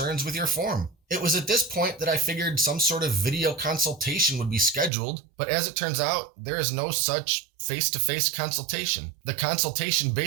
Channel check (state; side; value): drops out; left; at 4.9 s